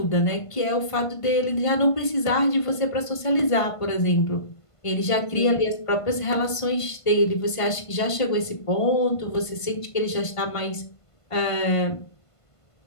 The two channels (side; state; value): right; late; 1.5 ms